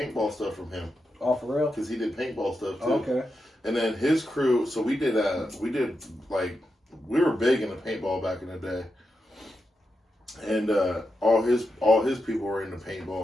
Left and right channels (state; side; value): normal; both; correlation 0.87